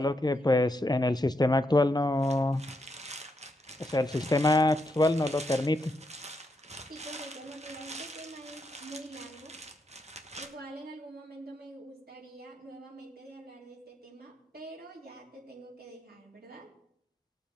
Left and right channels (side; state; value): both; normal; correlation 0.81